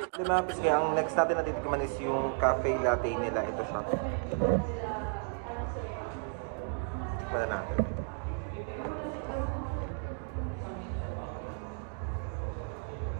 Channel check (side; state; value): left; silent; 56 dB below the other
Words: Mga pisngi, ang next natin na titikman is yung cafe latte nila. Ito siya. Tikman na natin.